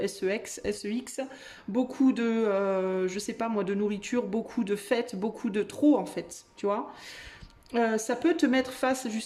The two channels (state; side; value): identical; both; correlation 1.00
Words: sex, beaucoup de, je sais pas moi, de nourriture, beaucoup de fêtes, beaucoup de trop en fait, tu vois. Ça peut te mettre face